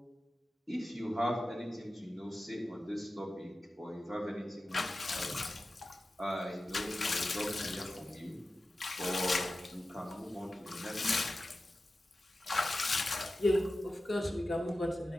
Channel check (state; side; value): normal; both; correlation 0.94